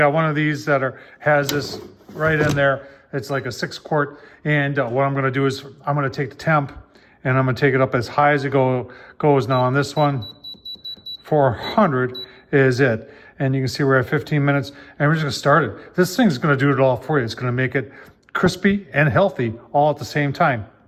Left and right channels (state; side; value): identical; both; correlation 1.00